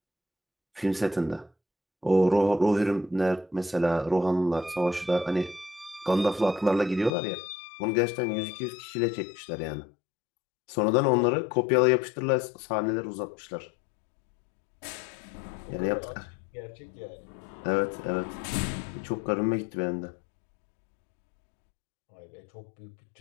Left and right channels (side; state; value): right; drops out; at 7.1 s